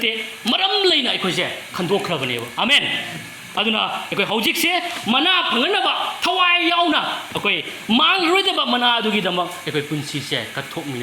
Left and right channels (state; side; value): identical; both; correlation 1.00